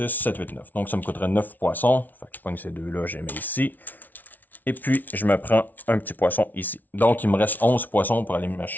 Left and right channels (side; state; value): right; late; 0.082 ms